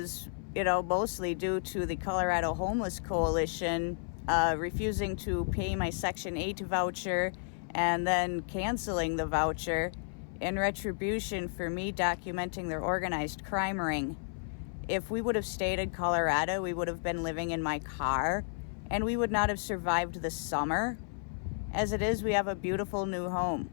mostly due to the Colorado Homeless Coalition refusing to pay my Section 8 voucher and then canceling the voucher in retribution for me documenting their organized crime ring. If we would have stayed in Colorado, we would have been living in my car, and we would not have survived the summer. As it is, we have a beautiful new home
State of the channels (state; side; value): silent; right; 56 dB below the other